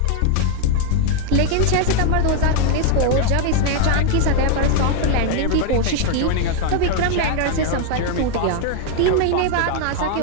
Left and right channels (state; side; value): different; both; correlation 0.00